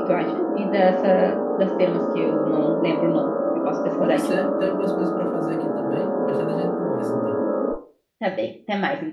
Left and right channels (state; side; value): identical; both; correlation 1.00